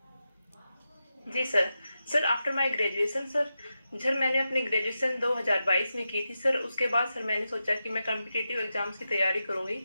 जी sir. Sir after my graduation sir मैंने अपनी ग्रेजुएशन 2022 में की थी सर। उसके बाद सर मैंने सोचा कि मैं कॉम्पिटिटिव एग्जाम्स की तैयारी करूंगी।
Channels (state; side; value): inverted; both; correlation -0.90